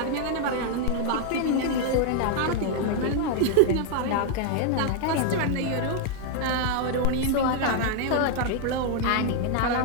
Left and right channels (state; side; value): different; both; correlation 0.00